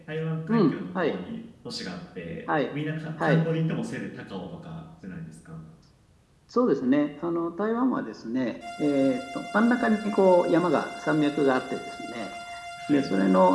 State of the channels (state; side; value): identical; both; correlation 1.00